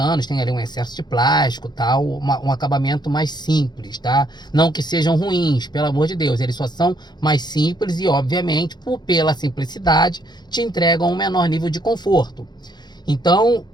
tem ali um excesso de plástico, tal, um acabamento mais simples, tá? Não que sejam ruins, pelo amor de Deus, eles só são mais simples e, obviamente, pela simplicidade, te entregam um menor nível de conforto. Então,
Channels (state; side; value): late; right; 0.21 ms